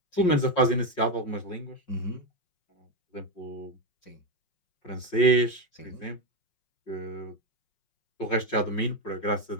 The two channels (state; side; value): late; right; 5.5 ms